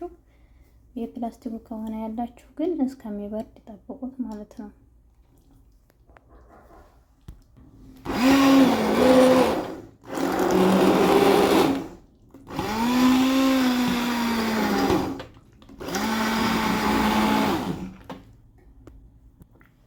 የፕላስቲኩ ከሆነ ያላችሁ ግን እስከሚበርድ ጠብቁት ማለት ነው።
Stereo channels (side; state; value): both; identical; correlation 1.00